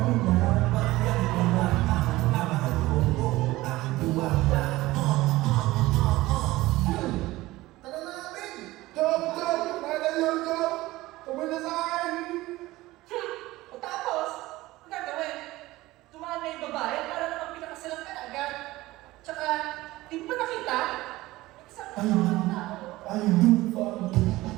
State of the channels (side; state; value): left; quieter; 18.4 dB